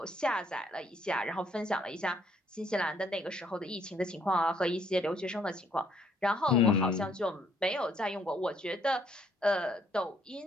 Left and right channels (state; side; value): normal; both; correlation 0.67